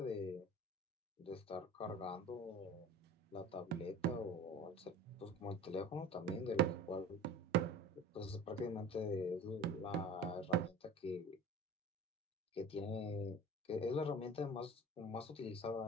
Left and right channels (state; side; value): normal; both; correlation 0.39